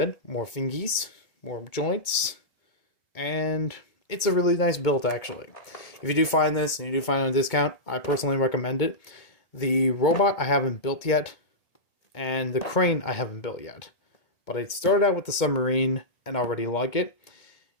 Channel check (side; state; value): right; late; 2.2 ms